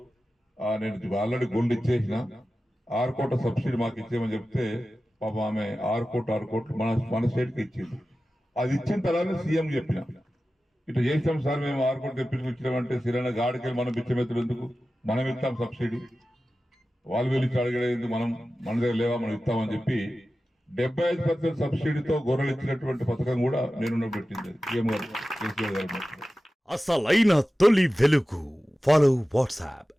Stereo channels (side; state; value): both; normal; correlation 0.94